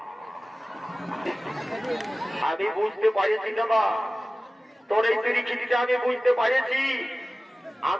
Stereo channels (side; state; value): both; normal; correlation 0.97